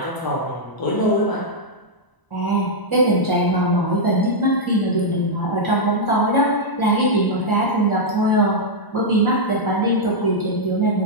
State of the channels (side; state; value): right; late; 1.0 ms